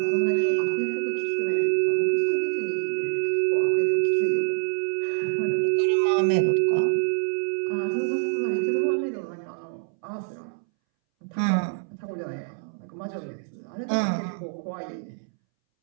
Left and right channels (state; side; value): silent; left; 61 dB below the other